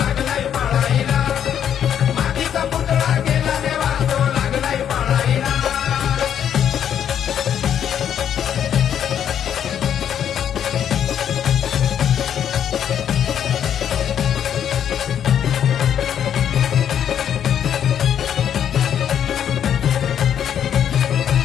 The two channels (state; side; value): quieter; right; 9.3 dB